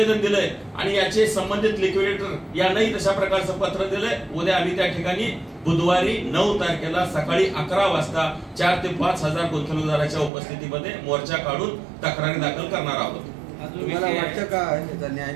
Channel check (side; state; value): left; drops out; at 10.3 s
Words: दिलंय आणि याचे संबंधित लिक्विडेटर यांनाही तशा प्रकारचं पत्र दिलंय। उद्या आम्ही त्या ठिकाणी बुधवारी 9 तारखेला सकाळी 11 वाजता 4 ते 5 हजार गुंतवणूकदारांच्या उपस्थितीमध्ये मोर्चा काढून तक्रारी दाखल करणार आहोत। तुम्हाला वाटतं का त्याचा न्याय